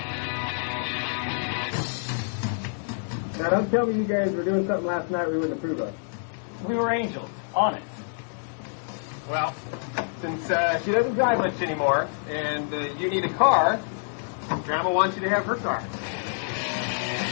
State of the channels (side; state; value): right; silent; digital silence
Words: Now, don't tell me you guys were doing something last night we wouldn't approve of. We were angels. Honest. Well, since she doesn't drive much anymore, and you need a car, Grandma wants you to have her car.